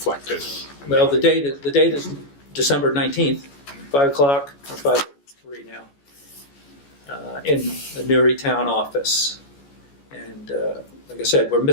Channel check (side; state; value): right; late; 14 ms